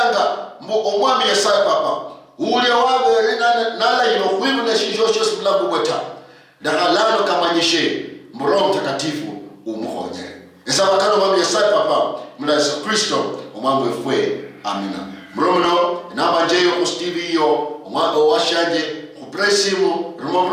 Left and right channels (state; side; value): identical; both; correlation 1.00